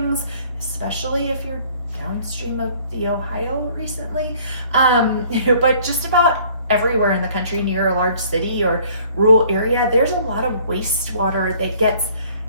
especially if you're downstream of the Ohio recently, but just about everywhere in the country near a large city or rural area, there's a lot of wastewater that gets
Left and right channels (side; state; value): both; inverted; correlation -0.56